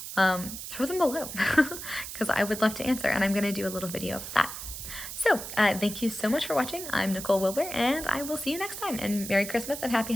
throw them below because I would love to answer, and I'm going to do a little video of that. So thank you so much for watching. I'm Nicole Wilbur, and I will see you next time, and Merry Christmas and Happy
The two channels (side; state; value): right; noise; hiss, 9 dB below the sound